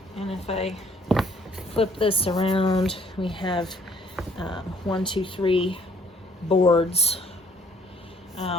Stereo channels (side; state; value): both; normal; correlation 0.62